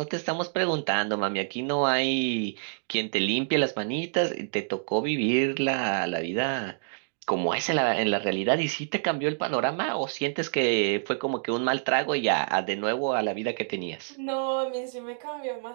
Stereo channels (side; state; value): left; silent; digital silence